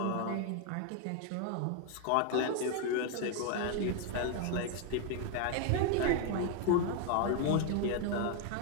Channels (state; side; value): different; both; correlation 0.01